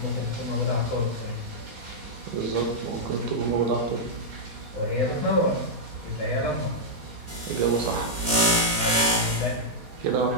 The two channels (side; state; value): left; late; 4.2 ms